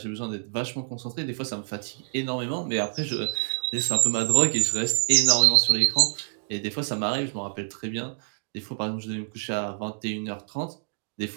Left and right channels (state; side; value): silent; left; digital silence